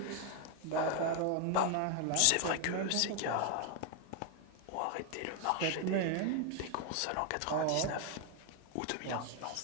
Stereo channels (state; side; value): different; both; correlation 0.01